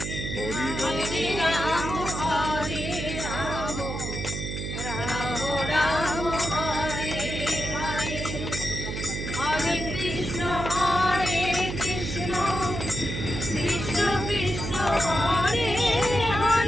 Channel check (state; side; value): noise; right; hum, 5 dB below the sound